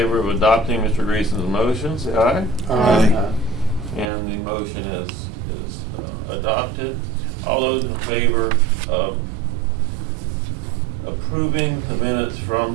of adopting Mr. Greason's motion, say aye. Aye. And the motion is adopted. All those in favor of approving the minutes from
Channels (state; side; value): drops out; left; at 4.0 s